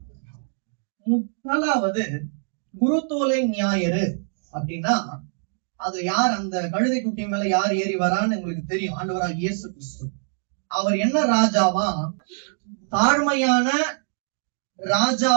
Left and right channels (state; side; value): silent; left; digital silence